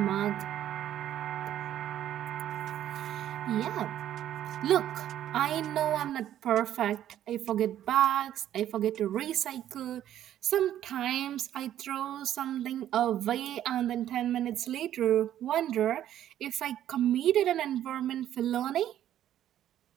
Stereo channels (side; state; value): left; quieter; 11.5 dB